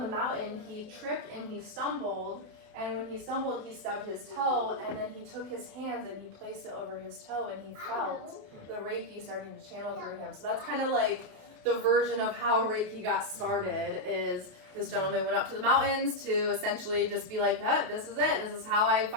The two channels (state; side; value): late; left; 28 ms